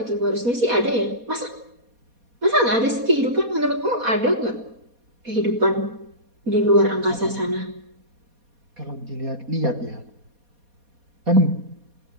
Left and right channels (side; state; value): left; late; 4.2 ms